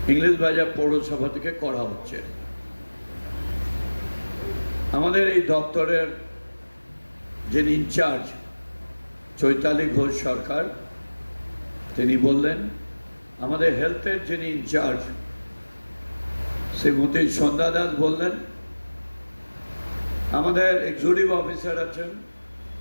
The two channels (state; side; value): inverted; both; correlation -1.00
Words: ইংরেজবাজার পৌরসভা থেকে করা হচ্ছে। আমাদের এই দপ্তরের যিনি ইনচার্জ চৈতালি ঘোষ সরকার, তিনি বললেন, আমাদের হেলথের যিনি ইনচার্জ শ্রীমতী সন্ধ্যা দাস বললেন, আমাদের এক্সিকিউটিভ অফিসার আছেন